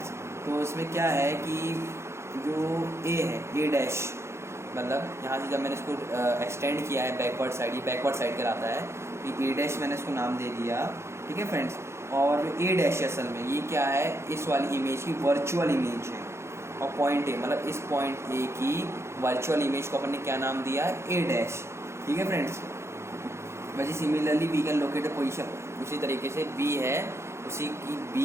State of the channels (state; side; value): late; left; 0.13 ms